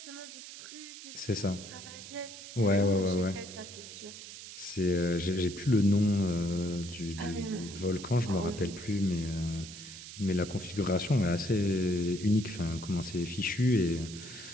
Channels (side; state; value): right; noise; hiss, 13 dB below the sound